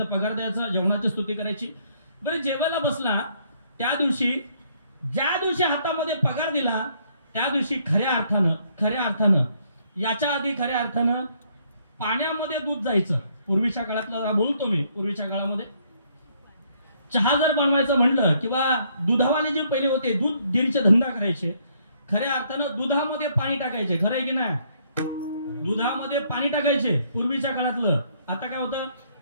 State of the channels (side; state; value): both; inverted; correlation -0.68